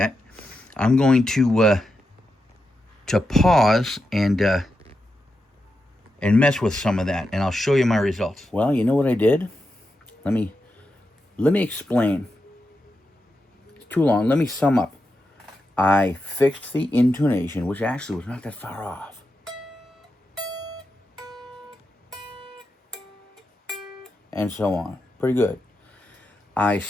I'm going to pause and mess with some of that, and I'll show you my results. Well, you know what I did? Let me explain. It's too long. Let me sum up. I fixed the intonation, which actually was not that far off. And so on. Pretty good. I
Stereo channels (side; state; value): both; normal; correlation 0.88